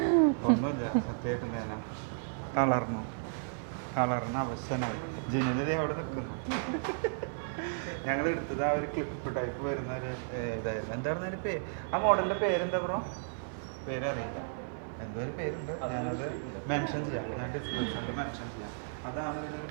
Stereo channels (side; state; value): left; silent; 55 dB below the other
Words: ഒന്നുമില്ല, സത്യമായിട്ടും തേന തളർന്ന് അവശനായി. ജിനൽ അവിടെ നിൽക്കുന്നു. ഞങ്ങൾ എടുത്തത് ആ ഒരു ക്ലിപ്പ് ടൈപ്പ് വരുന്ന ഒരു ഇതായിരുന്നു. എന്തായിരുന്നു അതിൻ്റെ ആ മോഡലിൻ്റെ പേരെന്താ ബ്രോ? പേരറിയില്ല, എന്തോ ഒരു പേരുണ്ട്. ഞാനത് മെൻഷൻ ചെയ്യാം, ഞാൻ ഡിസ്ക്രിപ്ഷനിൽ മെൻഷൻ ചെയ്യാം. അതാണ് ഇവരൊരു